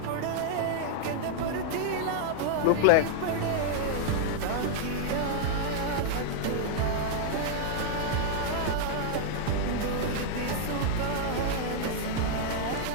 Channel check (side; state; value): both; different; correlation -0.01